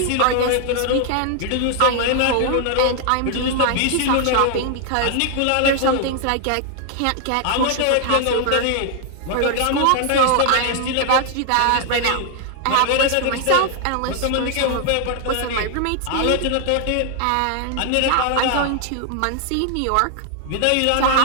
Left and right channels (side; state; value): both; different; correlation 0.00